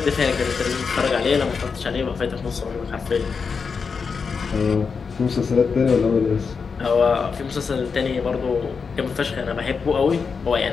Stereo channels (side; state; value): right; quieter; 5.4 dB